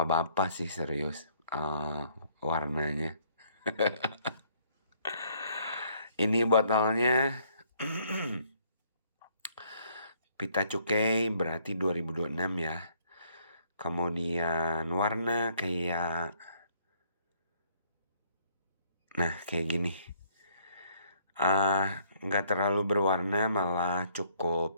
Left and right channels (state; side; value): inverted; both; correlation -0.65